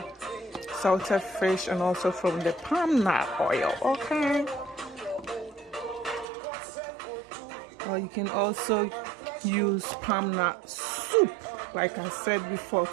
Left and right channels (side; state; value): left; drops out; at 6.2 s